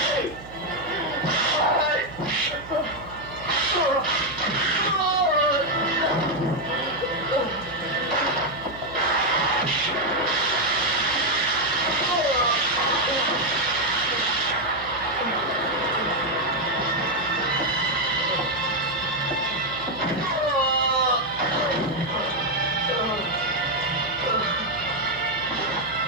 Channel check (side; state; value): right; noise; hum, 17 dB below the sound